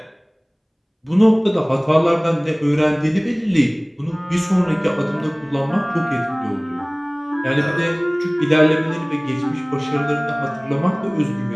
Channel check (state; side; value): identical; both; correlation 1.00